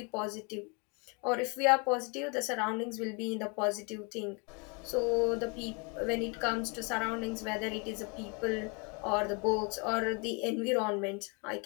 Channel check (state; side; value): quieter; right; 32.3 dB